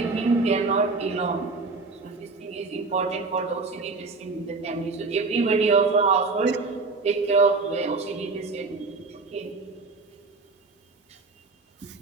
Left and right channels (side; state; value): left; quieter; 3.9 dB